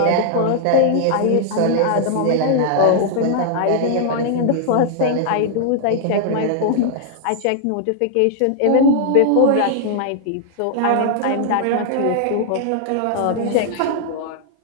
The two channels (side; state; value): both; different; correlation -0.01